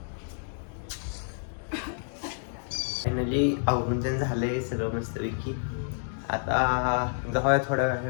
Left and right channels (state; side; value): silent; right; digital silence